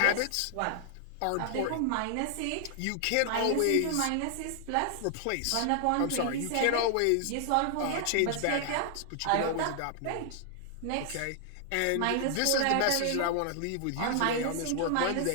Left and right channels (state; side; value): different; both; correlation 0.00